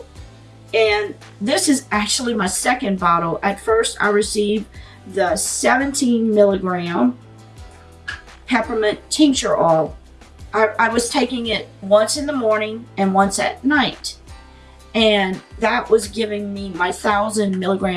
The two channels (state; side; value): identical; both; correlation 1.00